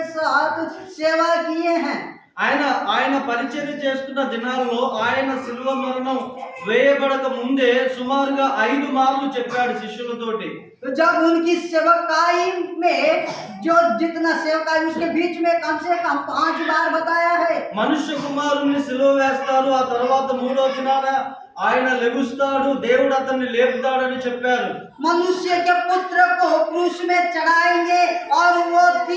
साथ सेवा किए हैं। ఆయన పరిచర్య చేస్తున్న దినాల్లో ఆయన శిలువ మరణం వేయబడక ముందే సుమారుగా 5 మార్లు చెప్పాడు శిష్యులతోటి. तो जब उनकी सेवकाई में जो जितना सेवकाई उसके बीच में कम से कम 5 बार बताया है। మనుష్య కుమారుణ్ణి సిలువ వేస్తారు, ఆ తర్వాత 3వ దినాన ఆయన లెగుస్తాడు, దేవుడు అతన్ని లేపుతాడని చెప్పారు. मनुष्य के पुत्र को क्रूस में चढ़ाएंगे और वो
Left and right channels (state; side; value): identical; both; correlation 1.00